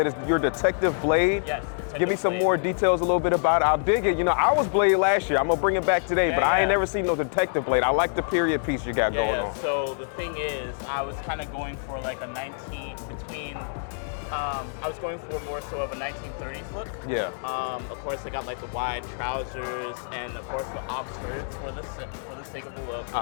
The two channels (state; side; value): silent; right; digital silence